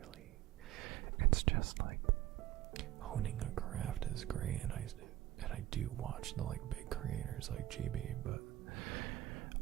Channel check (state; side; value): quieter; left; 14.3 dB